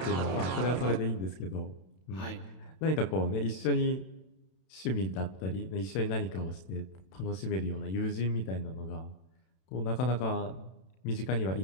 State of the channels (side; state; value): right; late; 32 ms